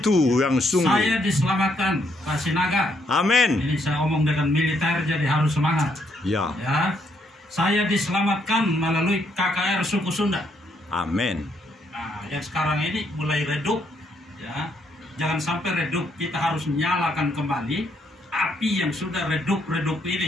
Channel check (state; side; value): normal; both; correlation 0.73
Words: yang sungguh. Saya diselamatkan, Pak Sinaga. Amin. Ini saya omong dengan militer, jadi harus semangat. Ya. Ya, saya diselamatkan melalui KKR suku Sunda. Amin. Nah, yang sekarang ini mulai redup, ya. Jangan sampai redup, kita harus nyalakan kembali api yang sudah redup